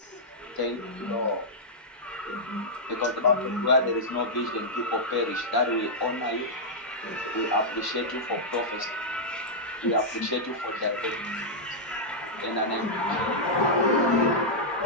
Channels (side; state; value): both; normal; correlation -0.08